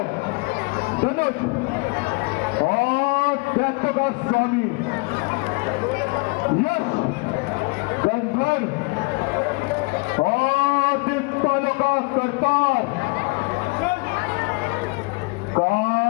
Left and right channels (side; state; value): right; quieter; 28.6 dB